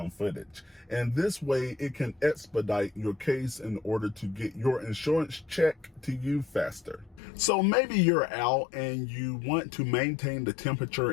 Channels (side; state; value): right; drops out; at 7.2 s